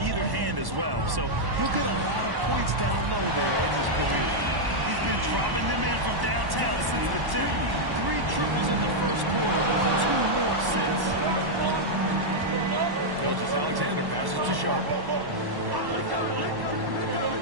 either hand as well. So he'll get a lot of points down low there in his career. He's been dropping them in from downtown since the tip. 3 triples in the first quarter, 2 more since. Gilgeous-Alexander passes to Sharp.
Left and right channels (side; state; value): left; late; 1.1 ms